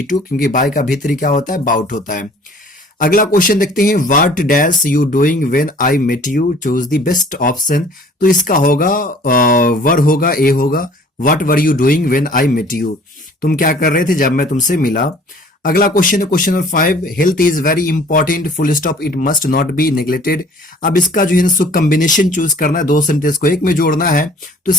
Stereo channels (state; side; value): normal; both; correlation 0.51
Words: टू, क्योंकि बाय का भीतरी क्या होता है, बाउट होता है। अगला क्वेश्चन देखते हैं। What dash you doing when I met you, choose the best option. तो इसका होगा वर होगा, ए होगा। What were you doing when I met you, तुम क्या कर रहे थे जब मैं तुमसे मिला। अगला क्वेश्चन है question number 5, health is very important full stop it must not be neglected. अब इसका जो है ना कॉम्बिनेशन चूज करना है, 2 सेंटेंस को एक में जोड़ना है, तो